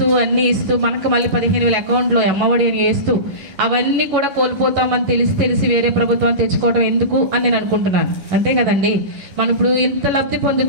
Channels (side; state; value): left; late; 11 ms